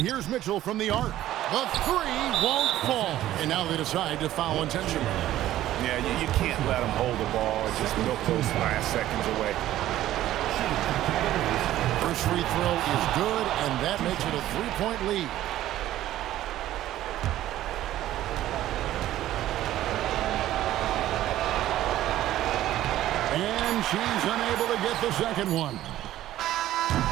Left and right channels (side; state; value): left; quieter; 13.7 dB